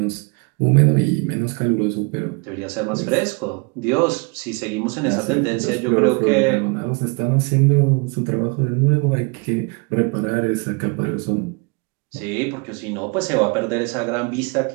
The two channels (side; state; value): left; quieter; 31.3 dB